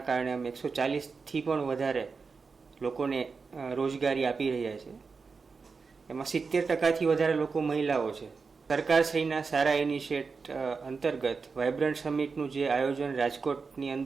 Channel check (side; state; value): left; quieter; 4.8 dB